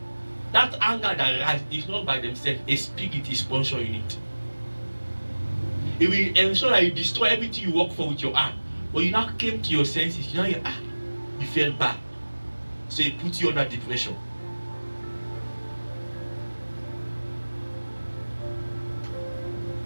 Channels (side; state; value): both; inverted; correlation -1.00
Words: that anger that arises is not by themselves. A spirit is sponsoring it. It will ensure that you destroy everything you work for with your hand. But you now came to your senses. You felt bad. So it puts you under depression.